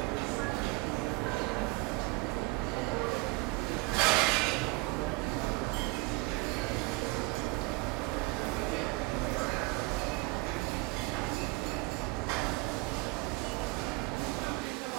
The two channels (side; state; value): left; quieter; 23.9 dB